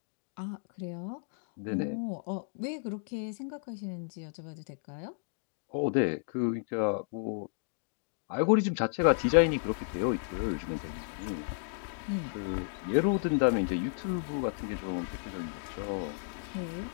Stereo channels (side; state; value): right; silent; digital silence